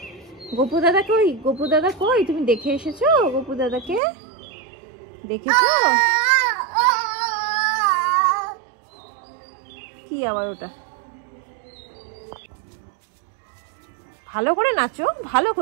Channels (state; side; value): drops out; left; at 4.0 s